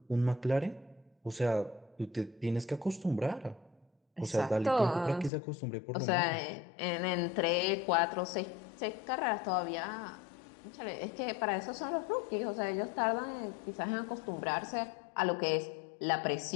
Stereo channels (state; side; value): drops out; right; at 5.3 s